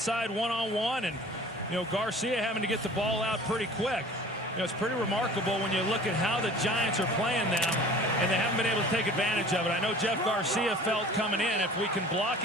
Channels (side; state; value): both; normal; correlation 0.45